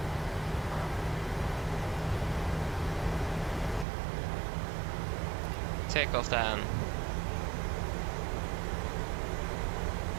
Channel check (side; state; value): left; drops out; at 3.9 s